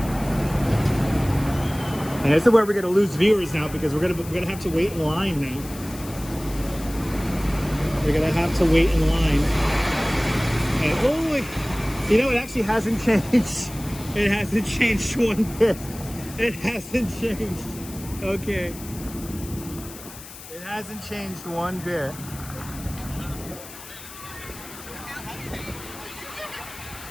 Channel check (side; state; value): left; noise; hiss, 15 dB below the sound